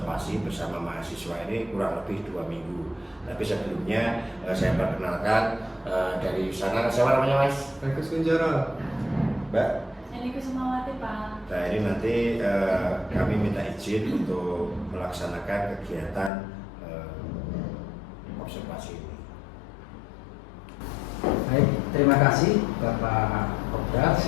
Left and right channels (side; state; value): right; drops out; at 16.3 s